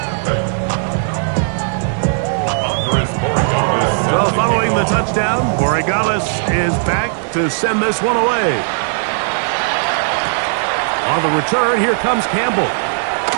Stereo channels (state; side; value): silent; left; digital silence